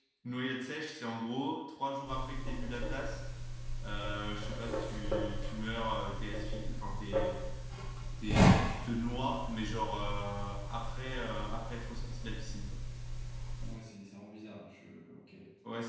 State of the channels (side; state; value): both; identical; correlation 1.00